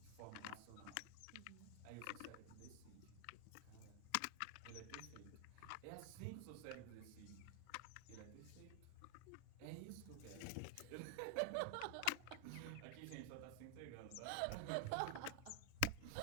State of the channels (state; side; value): different; both; correlation 0.00